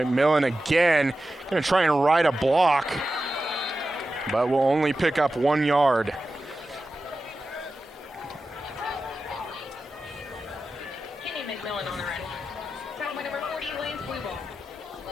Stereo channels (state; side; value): normal; both; correlation 0.93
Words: again. Gonna try and ride a block, but will only pick up 1 yard. Kenyon McMillan on the run. Tackle by number 40, Lance Weeble.